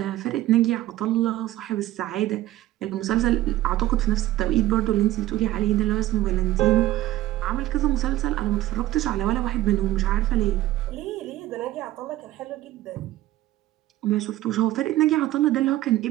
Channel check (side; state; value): left; quieter; 15.2 dB